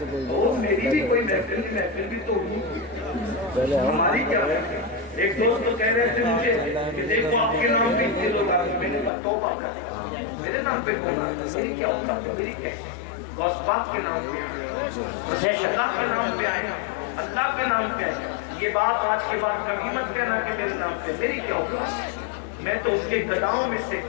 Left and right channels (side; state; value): right; drops out; at 9.1 s